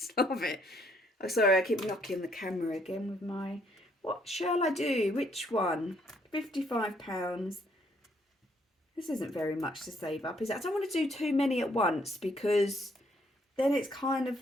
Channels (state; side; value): normal; both; correlation 0.69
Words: love it. Oh, sorry, I keep knocking the camera again with my What shall I do? Which one? £55. This isn't very much to save up, is it? I don't want to do too many at once because then it's kind of